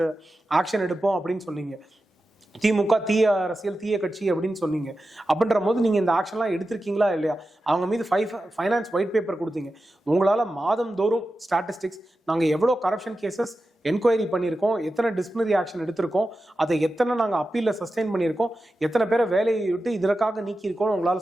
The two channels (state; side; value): normal; both; correlation 0.92